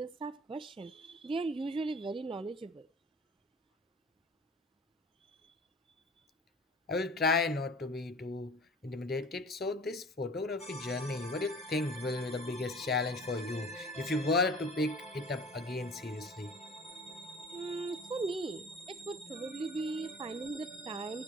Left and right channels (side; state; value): both; normal; correlation 0.44